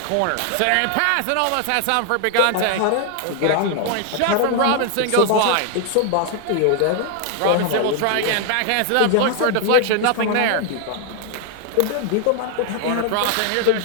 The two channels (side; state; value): both; different; correlation 0.00